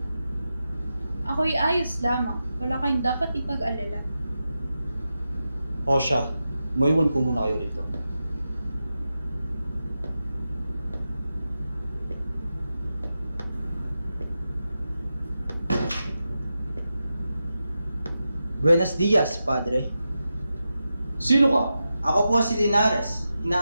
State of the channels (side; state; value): both; inverted; correlation -0.90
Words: Ako'y ayos lamang. Wala kayong dapat ipag-alala. O siya, maiwan ko muna kayo rito. Buenos dias, Padre. Sino ka? Ako po si Linares,